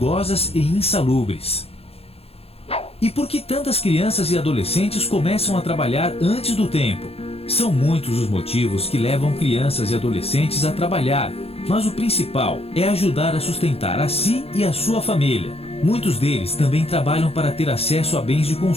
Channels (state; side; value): late; right; 0.29 ms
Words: e insalubres. E por que tantas crianças e adolescentes começam a trabalhar antes do tempo? São muitos os motivos que levam crianças e adolescentes a trabalhar, mas o principal é ajudar a sustentar a si e a sua família. Muitos deles também trabalham para ter acesso a bens de